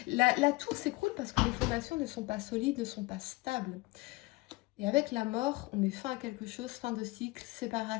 La tour s'écroule parce que les fondations ne sont pas solides, ne sont pas stables. Et avec la mort, on met fin à quelque chose, fin de cycle,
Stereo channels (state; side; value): quieter; right; 21.7 dB